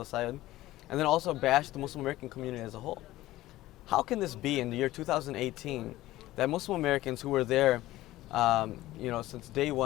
and then also bashed the Muslim American community as a whole. How can this be in the year 2018 that Muslim Americans who were there Since day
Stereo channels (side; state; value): right; quieter; 16.4 dB